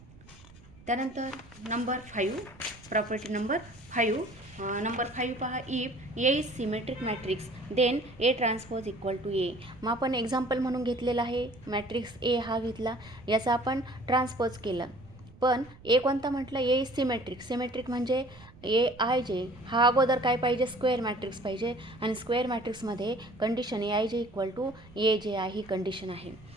त्यानंतर नंबर 5 प्रॉपर्टी नंबर 5 नंबर 5 पहा if A is symmetric matrix then A transpose equal to A. मग आपण एक्झाम्पल म्हणून घेतलेलं आहे मॅट्रिक्स A हा घेतला याचा आपण ट्रान्सपोज केला पण A कोणता म्हटलं A इज सिमेट्रिक. सिमेट्रिक म्हणजे AIJ हा अगोदर काय पाहिजे स्क्वेअर मॅट्रिक्स पाहिजे आणि स्क्वेअर मॅट्रिक्समध्ये condition AIJ equal to AJI ही कंडिशन आहे.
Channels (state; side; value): noise; right; rumble, 22 dB below the sound